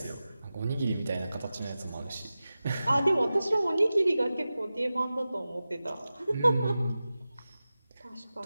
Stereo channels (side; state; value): both; inverted; correlation -0.95